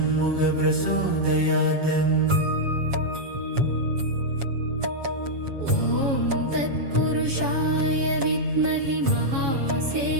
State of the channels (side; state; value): left; late; 7.2 ms